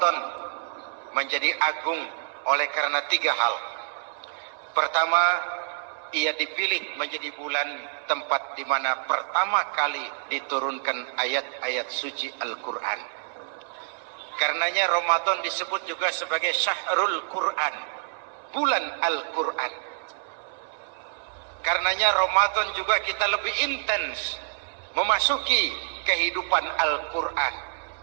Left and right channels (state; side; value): silent; left; 60 dB below the other